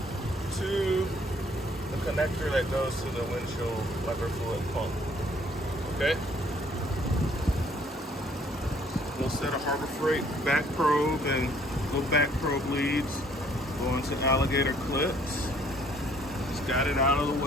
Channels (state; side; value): normal; both; correlation 0.61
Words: to the connector that goes to the windshield wiper fluid pump. Okay? We'll set a Harbor Freight back probe and little back probe leads going to alligator clips. Just got it out of the